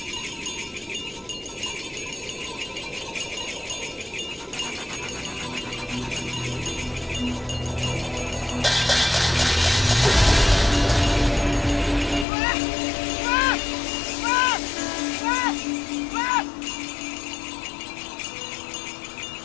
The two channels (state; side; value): drops out; right; at 12.2 s